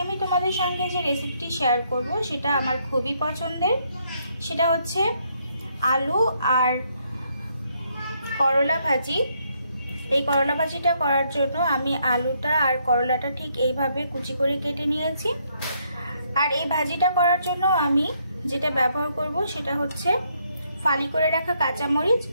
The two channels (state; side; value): inverted; both; correlation -0.73